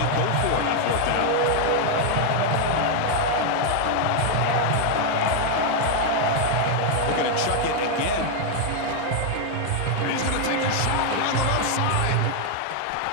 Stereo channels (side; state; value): both; different; correlation 0.00